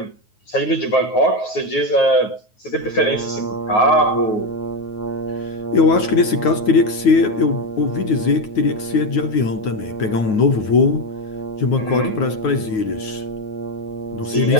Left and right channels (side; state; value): right; late; 9.4 ms